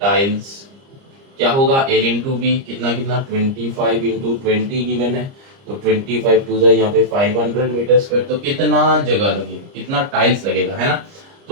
टाइल्स क्या होगा, L इंटू बी, कितना कितना 25 इंटू 20 गिवन है, तो 25 टू यहाँ पे 500 मीटर स्क्वायर, तो कितना जगह लगेगा, कितना टाइल्स लगेगा, है ना।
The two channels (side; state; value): left; late; 30 ms